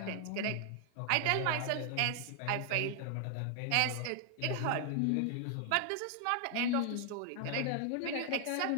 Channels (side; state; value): both; different; correlation 0.00